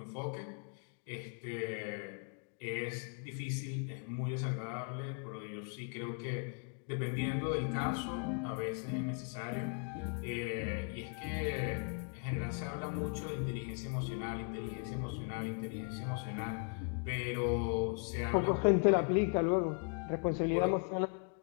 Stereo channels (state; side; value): quieter; right; 39.5 dB